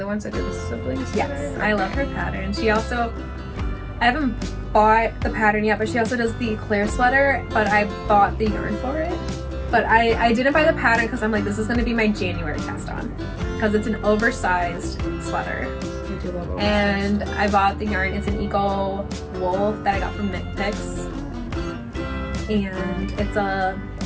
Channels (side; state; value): both; identical; correlation 1.00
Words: ones that do the siblings? Yes, I love her pattern. She also, I haven't bought the pattern yet, but she also does the Eclair sweater, but I bought the yarn for it. But I didn't buy the pattern because I'm like, this is going to be my January cast on. Because it's an oversized sweater. I do love oversized. And I bought the yarn. It's an eco wool that I got from Knit Picks. And it's